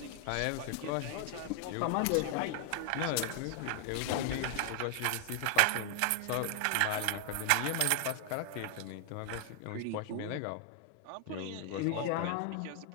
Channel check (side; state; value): both; different; correlation 0.00